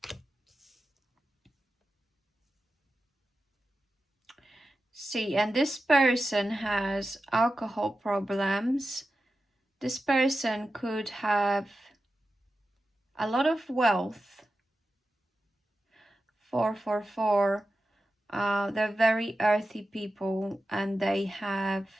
See, and this person has alcohol problems. This person could have a lot of wealth. 444. They're very earthy people and they have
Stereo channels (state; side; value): normal; both; correlation 0.92